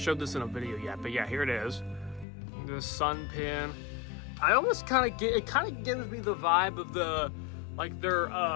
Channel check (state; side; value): drops out; right; at 2.2 s